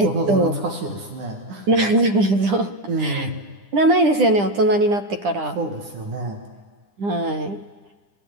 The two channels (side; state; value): left; late; 10 ms